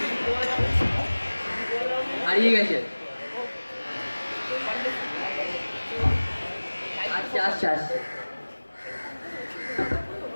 হারিয়ে গেছে। আচ্ছা আচ্ছা আচ্ছা।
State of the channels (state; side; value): inverted; both; correlation -1.00